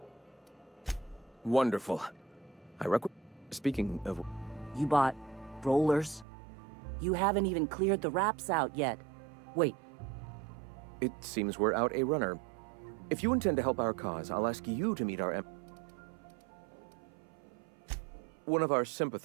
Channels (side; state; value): left; drops out; at 6.2 s